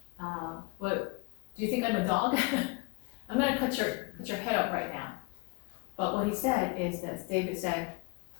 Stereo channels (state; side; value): quieter; right; 28.1 dB